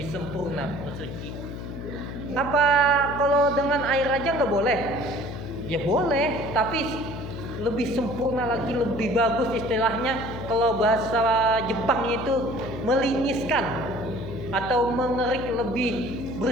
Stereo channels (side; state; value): left; noise; hum, 8 dB below the sound